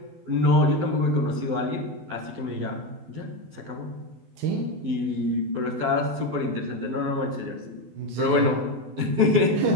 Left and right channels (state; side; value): late; left; 12 ms